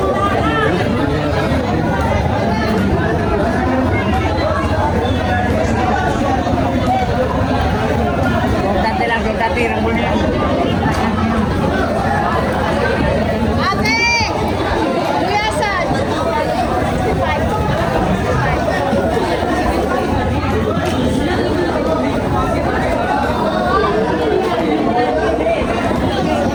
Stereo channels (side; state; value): both; identical; correlation 1.00